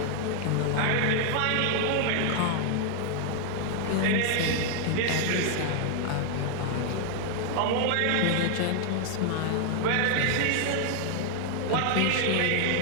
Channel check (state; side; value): different; both; correlation 0.00